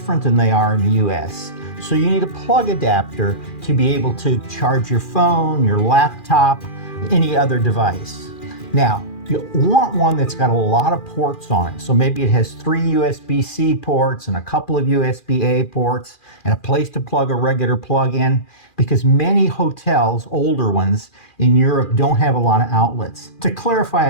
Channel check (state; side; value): late; right; 2.4 ms